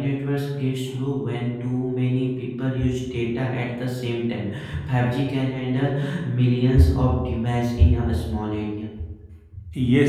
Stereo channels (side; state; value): both; identical; correlation 1.00